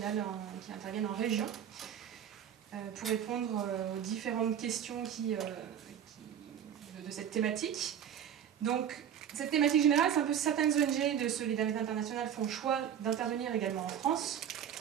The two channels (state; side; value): quieter; left; 9.2 dB